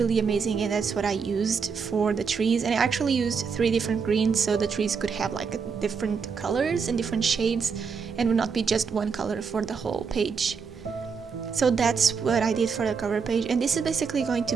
amazing, and that's what I used for the trees. And I actually used 3 different greens, so the trees could have like different colors and different shades, and would not be just one color for the whole page. So that's what I did for the cover page, and this is basically going to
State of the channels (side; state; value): left; quieter; 5.7 dB